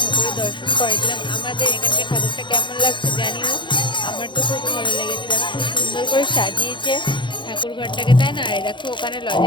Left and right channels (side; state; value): right; late; 0.23 ms